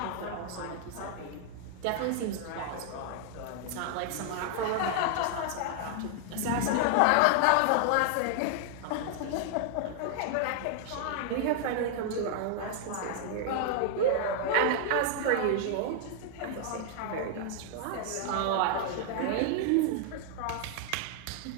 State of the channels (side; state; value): both; different; correlation 0.00